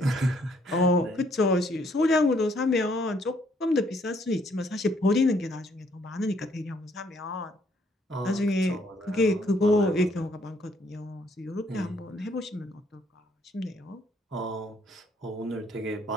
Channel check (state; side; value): normal; both; correlation 0.67